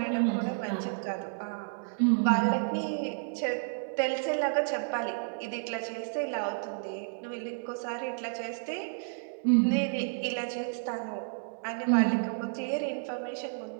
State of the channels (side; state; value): left; silent; digital silence